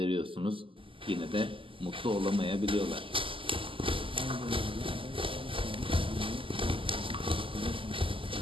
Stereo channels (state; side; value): late; left; 0.25 ms